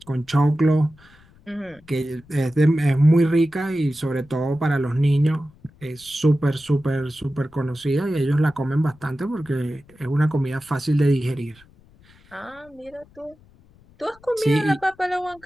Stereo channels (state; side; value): noise; left; rumble, 27 dB below the sound